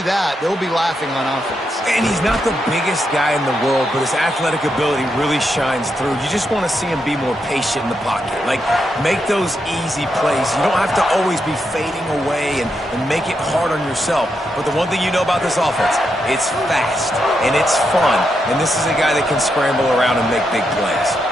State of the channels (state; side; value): normal; both; correlation 0.83